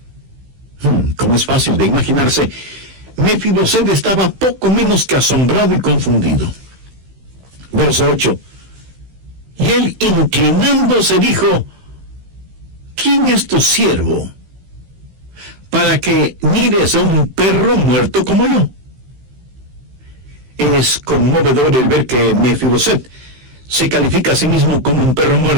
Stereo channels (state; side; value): late; left; 16 ms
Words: Como es fácil de imaginarse, Mefiboset estaba poco menos que asombrado y confundido. Verso 8. Y él, inclinándose, dijo: ¿quién es tu siervo para que mires a un perro muerto como yo? Es conmovedor el ver que Mefiboset se califica a sí mismo como un perro